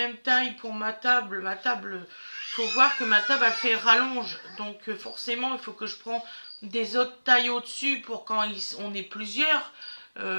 taille pour ma table, faut voir que ma table elle fait rallonge, donc forcément il faut que je prends des autres tailles au-dessus pour quand on est plusieurs,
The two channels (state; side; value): inverted; both; correlation -1.00